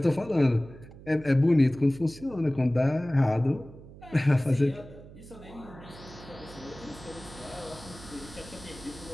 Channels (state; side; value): noise; right; hum, 18 dB below the sound